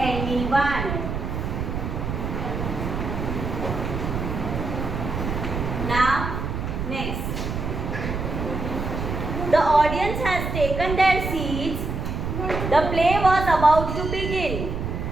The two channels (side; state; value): right; noise; rumble, 3 dB below the sound